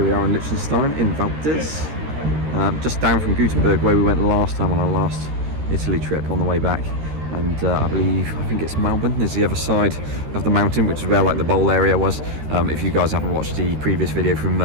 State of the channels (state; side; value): late; left; 13 ms